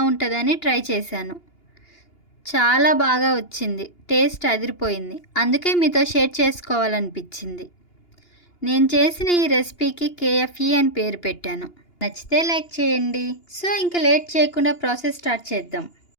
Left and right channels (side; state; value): right; late; 2.8 ms